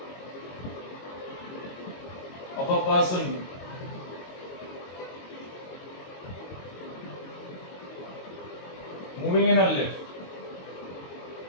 of a person moving in a lift.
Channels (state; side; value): late; right; 22 ms